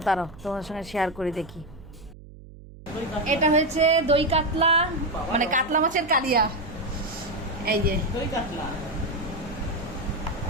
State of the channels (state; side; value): noise; right; hum, 18 dB below the sound